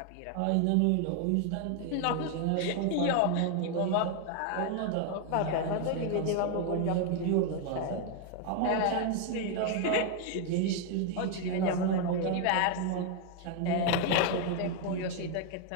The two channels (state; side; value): different; both; correlation 0.01